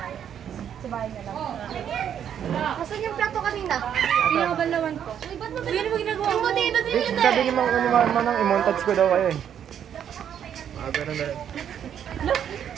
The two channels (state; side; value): quieter; left; 9.1 dB